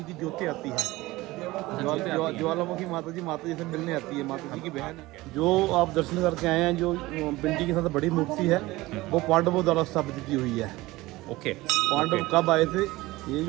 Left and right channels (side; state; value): left; quieter; 19.4 dB